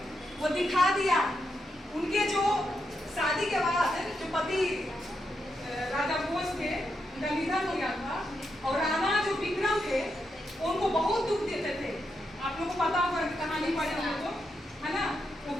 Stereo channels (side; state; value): both; normal; correlation 0.84